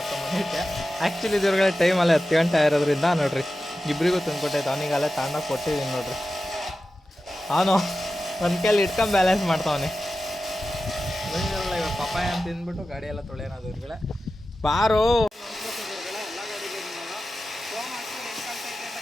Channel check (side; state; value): both; normal; correlation 0.93